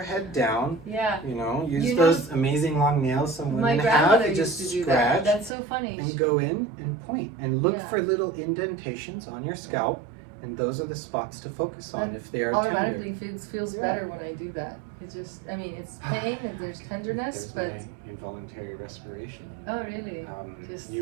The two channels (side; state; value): left; drops out; at 5.5 s